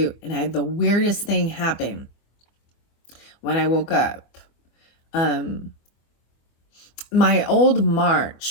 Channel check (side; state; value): right; late; 25 ms